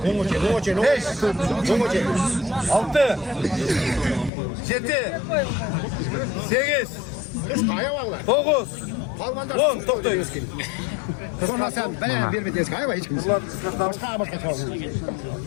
Beş. Altı. Yedi. Sekiz. Dokuz. On. Toplayız. Sonra sen ben bir bites kayba hiç kimse. Başka çalın.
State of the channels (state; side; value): drops out; right; at 4.3 s